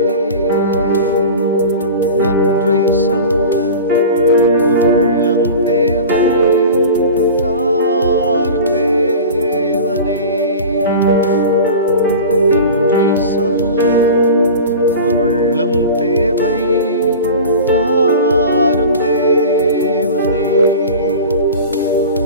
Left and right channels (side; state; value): both; inverted; correlation -0.34